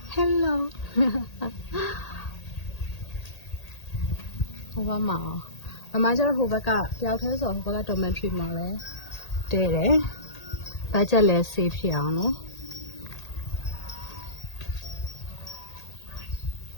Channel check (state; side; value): late; right; 1.8 ms